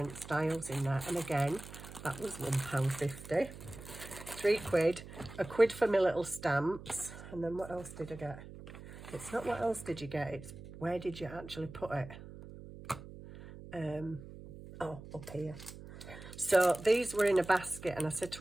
styles in there. And again, that was £1.50. £3. £1 for my little stamps. And then what else did I get? It's not what else did you get, it's where did you actually put it? Oh, up here. So these were in a basket, and I said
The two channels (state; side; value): noise; right; hum, 14 dB below the sound